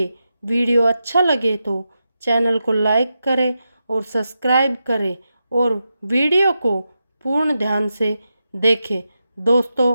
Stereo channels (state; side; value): inverted; both; correlation -0.88